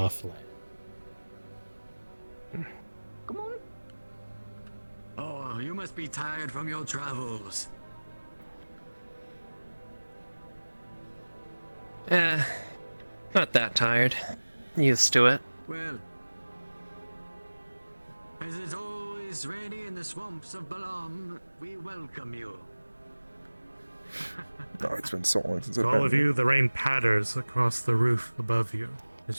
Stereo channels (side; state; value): both; inverted; correlation -1.00